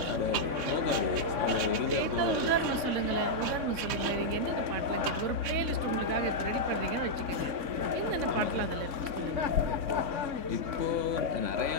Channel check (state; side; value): late; left; 3.6 ms